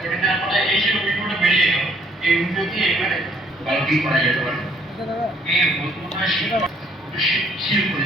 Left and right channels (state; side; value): normal; both; correlation 0.63